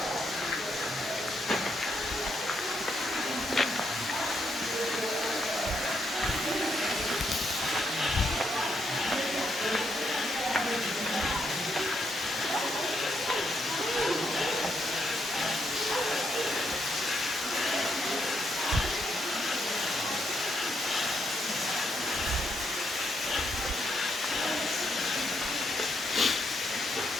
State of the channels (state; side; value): normal; both; correlation 0.77